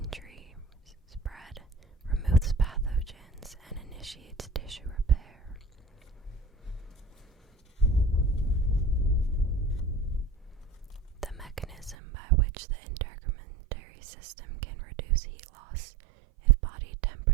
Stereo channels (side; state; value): left; drops out; at 12.0 s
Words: spread, removes pathogens, and initiates tissue repair. The mechanism by which the integumentary system can reduce heat loss if body